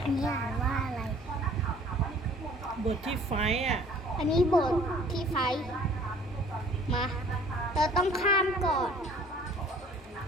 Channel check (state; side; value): normal; both; correlation 0.53